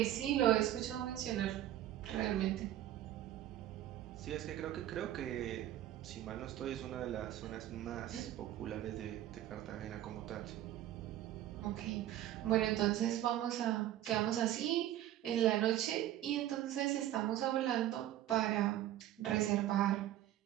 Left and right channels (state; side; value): quieter; left; 13.1 dB